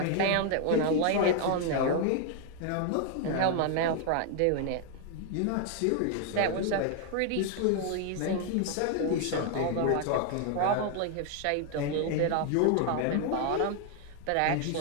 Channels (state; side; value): different; both; correlation 0.00